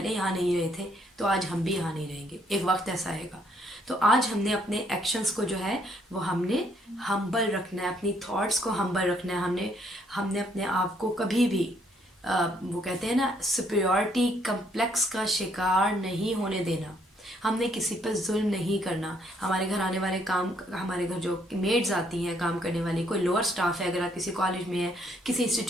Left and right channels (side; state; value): both; normal; correlation 0.69